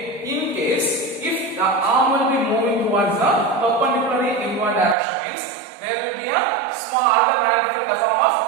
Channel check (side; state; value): left; drops out; at 5.0 s